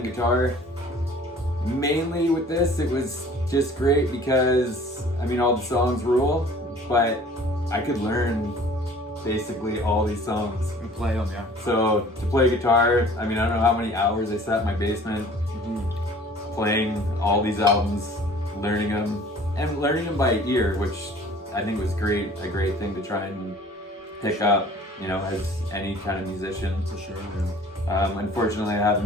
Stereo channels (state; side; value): normal; both; correlation 0.50